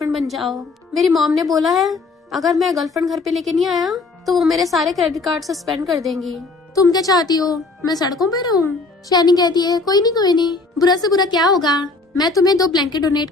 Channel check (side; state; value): right; quieter; 3.7 dB